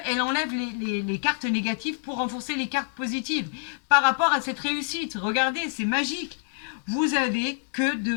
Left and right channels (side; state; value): right; silent; 60 dB below the other